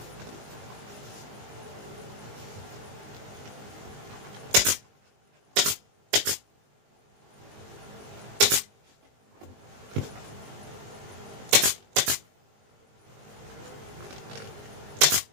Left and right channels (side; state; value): left; late; 20 ms